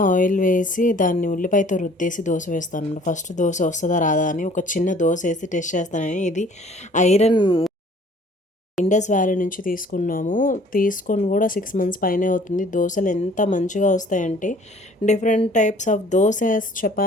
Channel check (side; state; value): both; normal; correlation 0.54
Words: ఆయిల్ వేసి దాన్ని ఉల్లిపాయతో రుద్దేసి దోస వేస్తానన్నమాట. ఫస్ట్ దోస వస్తదా రాదా అని ఒక చిన్న దోసేసి టెస్ట్ చేస్తానని. ఇది ఐరన్ ఇండస్ వ్యాలీ నుంచి తీసుకున్నాము. తీసుకొని కూడా 6 మంత్స్ పైనే అవుతుంది. దోసలు ఎంత మంచిగా వస్తాయంటే different types of dosas,